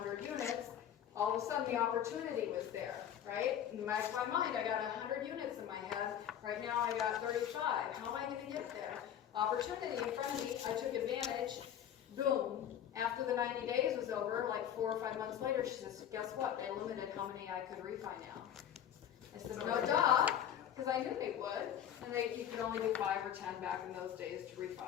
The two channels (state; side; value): quieter; right; 9.8 dB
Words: units, all of a sudden the opportunity was there, right? In the back of my mind, I got 100 units in my head, right now I got 35, how am I gonna get there? Opportunity in front of me, I took advantage, boom. After the 90 days was over, like 4 or 5 months later, she says, guess what, they limited how many I could refi now. I said, no duh, because I knew they would, and you could only do 5 or 10 back in those days to